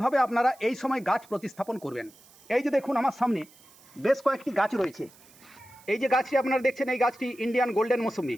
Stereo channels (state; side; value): noise; right; hiss, 26 dB below the sound